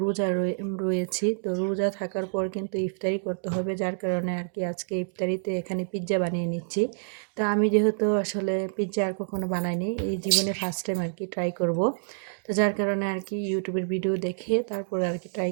রোজা রয়েছি, তো রোজা থাকার পর কিন্তু ইফতারি করতে হবে, যার কারণে আর কি আজকে ইফতারিতে এখানে পিৎজা বানিয়ে নিচ্ছি। তো আমি যেহেতু আসলে পিৎজা আর কখনো বানাইনি, এই জীবনে ফার্স্ট টাইম আর কি ট্রাই করব। তো যার কারণে আর কি ইউটিউবের ভিডিও দেখে তারপরে আর কি ট্রাই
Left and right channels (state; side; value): silent; left; digital silence